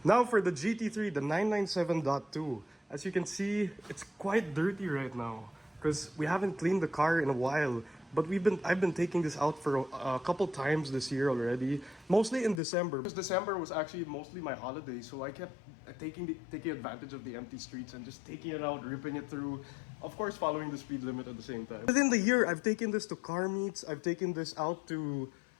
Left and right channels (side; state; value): right; drops out; at 12.6 s